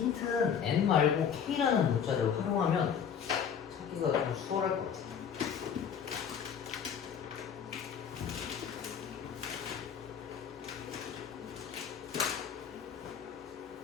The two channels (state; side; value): quieter; right; 7.6 dB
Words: N 말고 K라는 문자를 활용하면 찾기가 좀 수월할 것 같아.